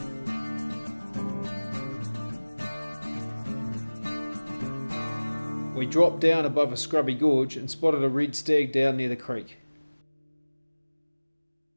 We dropped down above a scrubby gorge and spotted a red stag down near the creek.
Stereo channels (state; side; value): inverted; both; correlation -1.00